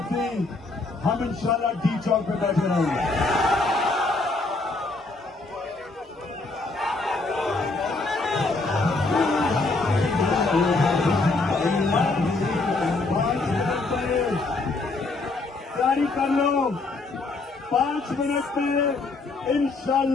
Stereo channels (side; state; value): right; quieter; 3.4 dB